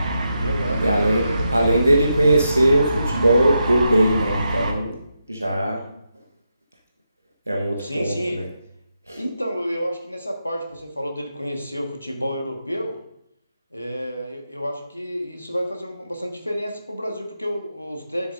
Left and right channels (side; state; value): both; inverted; correlation -0.85